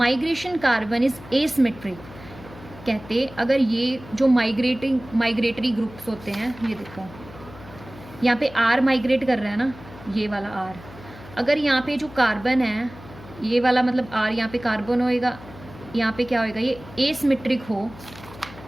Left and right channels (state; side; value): noise; left; hum, 18 dB below the sound